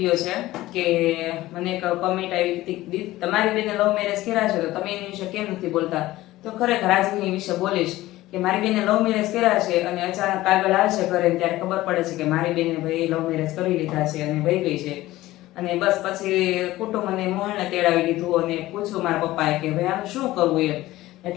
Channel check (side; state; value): right; quieter; 16.8 dB